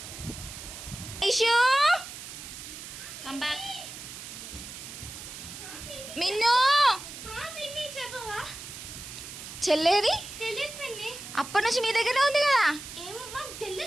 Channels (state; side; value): noise; right; hiss, 11 dB below the sound